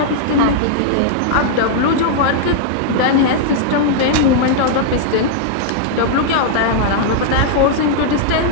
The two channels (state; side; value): different; both; correlation -0.01